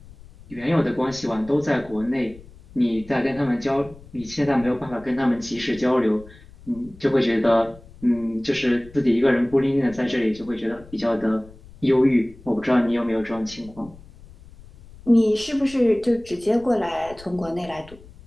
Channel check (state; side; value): noise; left; rumble, 21 dB below the sound